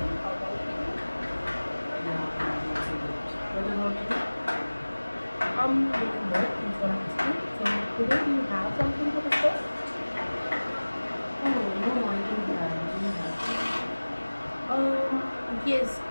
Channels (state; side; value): inverted; both; correlation -1.00